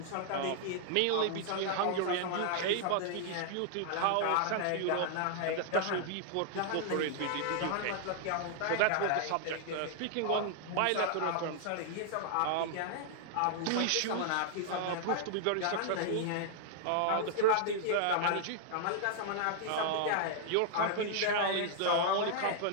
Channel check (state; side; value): different; both; correlation -0.01